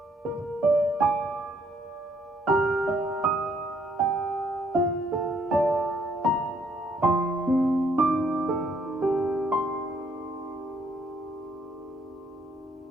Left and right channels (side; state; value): both; normal; correlation 0.68